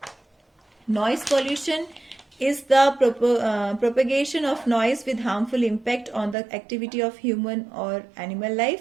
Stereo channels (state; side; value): drops out; left; at 6.4 s